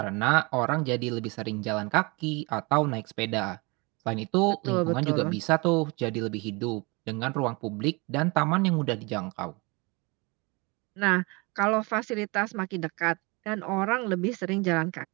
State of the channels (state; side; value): quieter; left; 27.5 dB